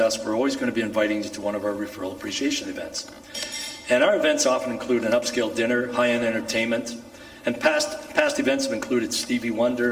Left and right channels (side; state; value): both; identical; correlation 1.00